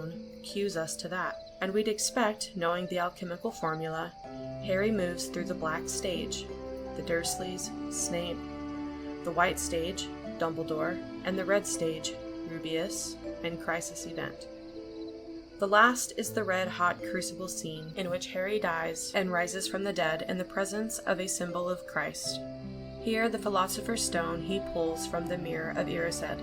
cues us to that, and we'd expect, knowing the alchemical formula, Harry moves through the black stage, the Dursleys, Snape, the white stage, Dumbledore, and the red stage, Rubeus, and Crisis Event. The last is the red-hot crucible scene in which Harry dies and rises from the dead in the presence of a symbol of Christ. Here, the Philosopher's Stone he pulls from the Mirror of Erised.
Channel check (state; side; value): identical; both; correlation 1.00